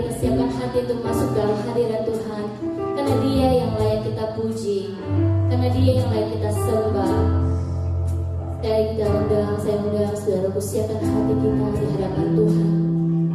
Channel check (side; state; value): both; identical; correlation 1.00